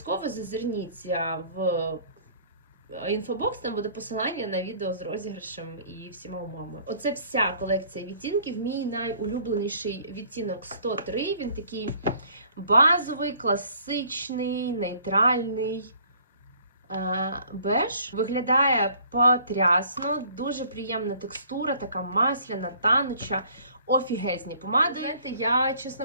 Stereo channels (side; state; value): both; inverted; correlation -0.56